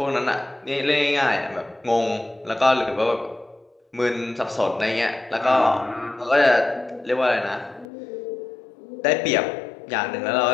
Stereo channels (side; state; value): right; drops out; at 7.9 s